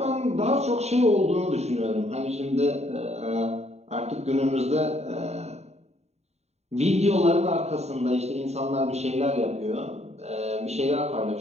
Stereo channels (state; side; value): late; left; 0.32 ms